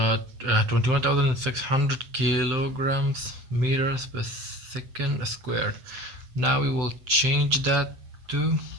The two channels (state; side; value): late; left; 7.8 ms